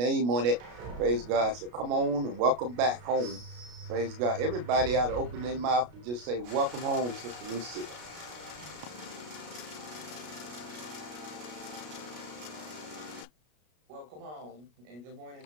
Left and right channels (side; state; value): left; late; 33 ms